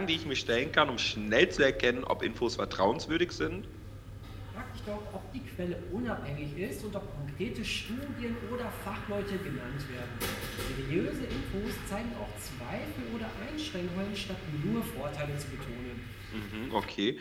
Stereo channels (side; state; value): both; identical; correlation 1.00